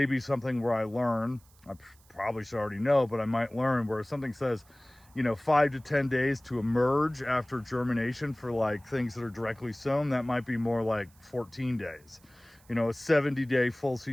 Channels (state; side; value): noise; right; hiss, 29 dB below the sound